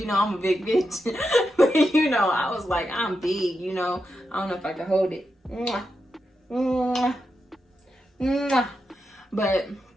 know, I'm a big bitch. But, you know, I was like, I'm big, you know. I don't know if I can hold it. But,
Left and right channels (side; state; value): both; normal; correlation 0.87